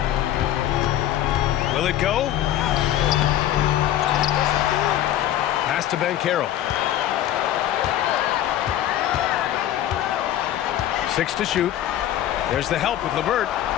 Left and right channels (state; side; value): quieter; right; 12.2 dB